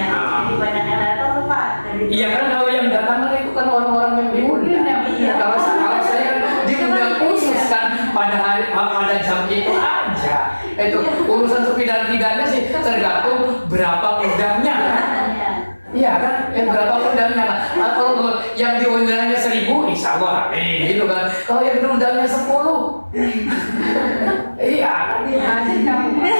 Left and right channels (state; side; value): inverted; both; correlation -1.00